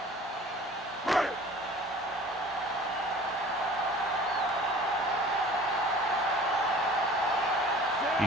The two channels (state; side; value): normal; both; correlation 0.45